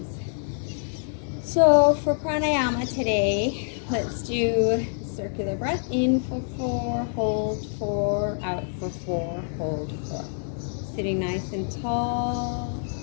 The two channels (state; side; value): silent; right; digital silence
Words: So for pranayama today, let's do circular breath. In for 4, hold 4, out for 4, hold 4. Sitting nice and tall,